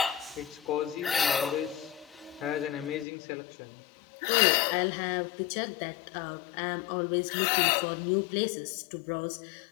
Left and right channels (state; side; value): drops out; right; at 3.1 s